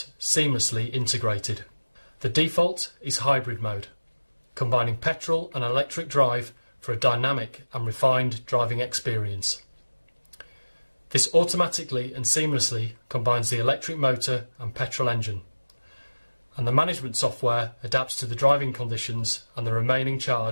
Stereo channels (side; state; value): both; inverted; correlation -1.00